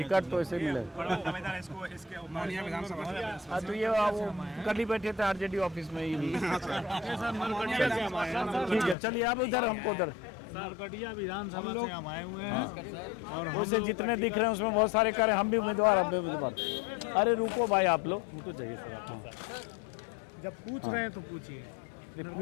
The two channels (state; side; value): drops out; right; at 9.0 s